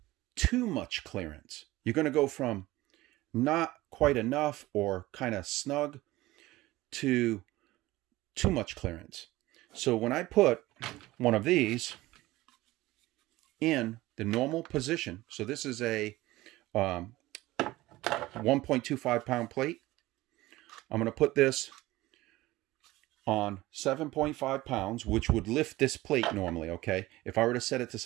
too much clearance. You're going to go from not quite enough or kind of snug to too much clearance. So when I put one of these in the normal position, so this is a 1.25 pound plate. I'm going to put this on 7.5 pounds, which would lift this plate normally, okay? If I were to set it to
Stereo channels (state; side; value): quieter; left; 18.3 dB